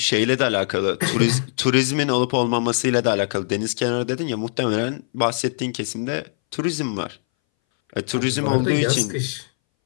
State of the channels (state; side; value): silent; right; 62 dB below the other